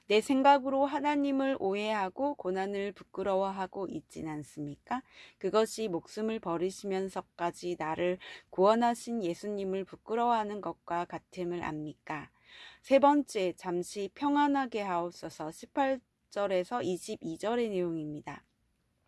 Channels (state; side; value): identical; both; correlation 1.00